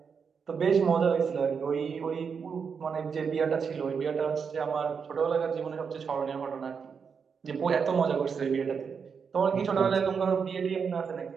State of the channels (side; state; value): left; quieter; 6.1 dB